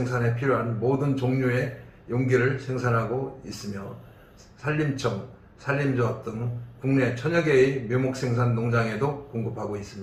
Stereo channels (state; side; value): identical; both; correlation 1.00